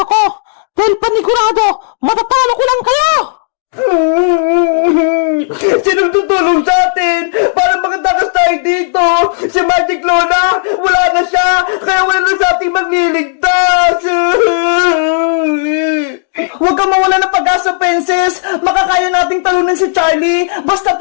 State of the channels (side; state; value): right; silent; digital silence